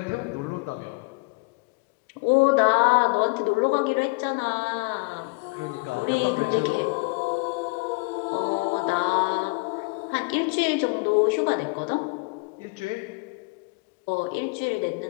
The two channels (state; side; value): quieter; right; 30.0 dB